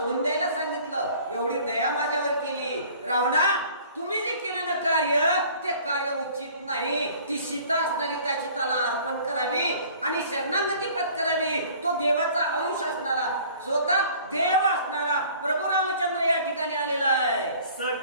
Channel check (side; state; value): both; inverted; correlation -0.51